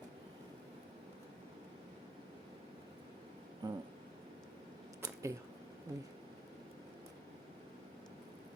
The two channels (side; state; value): both; normal; correlation 0.73